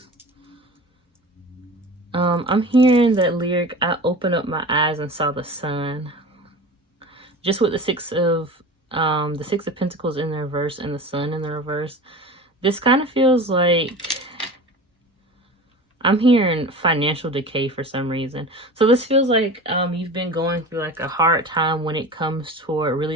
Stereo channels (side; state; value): both; normal; correlation 0.34